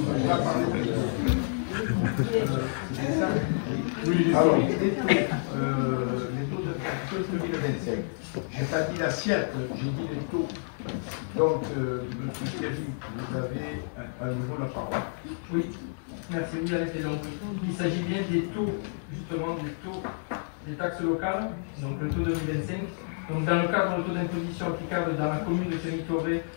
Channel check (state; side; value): silent; right; digital silence